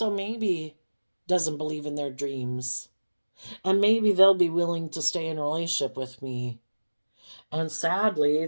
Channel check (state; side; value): inverted; both; correlation -1.00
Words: maybe doesn't believe in their dreams. And maybe they'll be willing to stay in a relationship with me. And sadly,